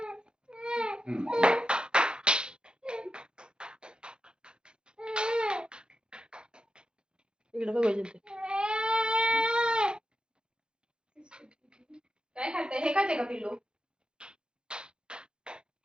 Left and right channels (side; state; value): left; late; 0.048 ms